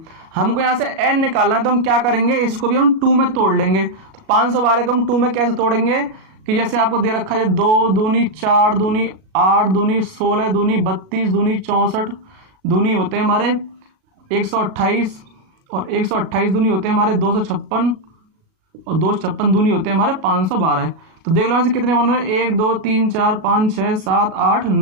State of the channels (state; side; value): late; left; 37 ms